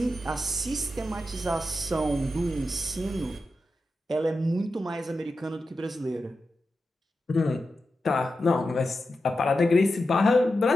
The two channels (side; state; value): both; normal; correlation 0.90